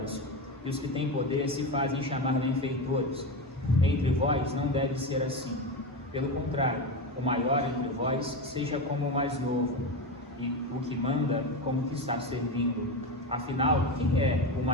e os que têm poder se fazem chamar benfeitores. Entre vós não deve ser assim. Pelo contrário, o maior entre vós seja como o mais novo, e o que manda como o que está servindo. Afinal, quem é o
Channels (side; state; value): both; normal; correlation 0.18